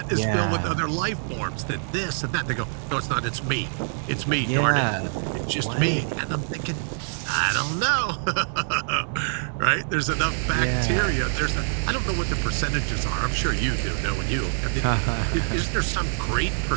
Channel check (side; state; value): left; silent; 62 dB below the other